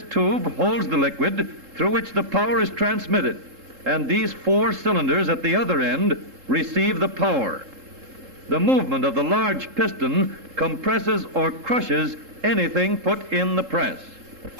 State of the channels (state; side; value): late; left; 3.7 ms